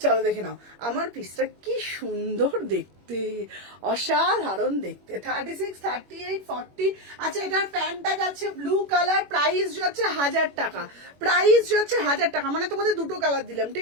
চলো দেখে নাও আমার পিসটা কি সুন্দর দেখতে, অসাধারণ দেখতে। 36, 38, 40। আচ্ছা এটার প্যান্টটা যাচ্ছে ব্লু কালার, প্রাইস যাচ্ছে 1000 টাকা, প্রাইস যাচ্ছে 1000 টাকা। মানে তোমাদের দুটো কালার দিলাম,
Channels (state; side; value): late; left; 21 ms